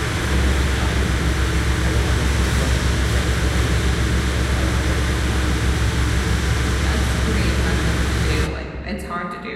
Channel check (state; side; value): identical; both; correlation 1.00